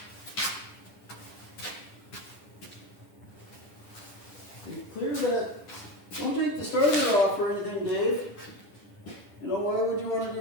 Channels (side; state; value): right; late; 10 ms